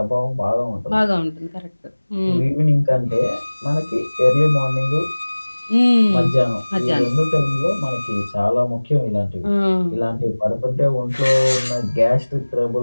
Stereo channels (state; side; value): inverted; both; correlation -1.00